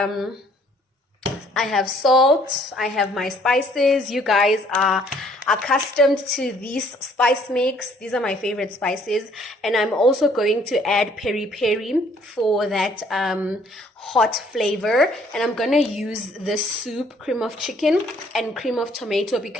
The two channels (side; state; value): both; normal; correlation 0.62